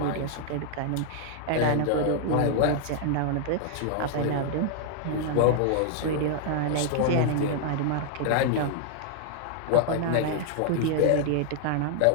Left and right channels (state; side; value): different; both; correlation 0.00